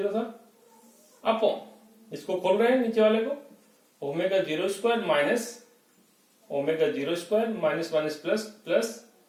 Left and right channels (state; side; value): identical; both; correlation 1.00